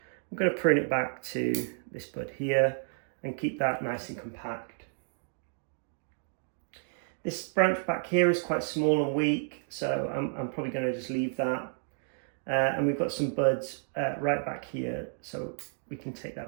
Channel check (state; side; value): silent; left; digital silence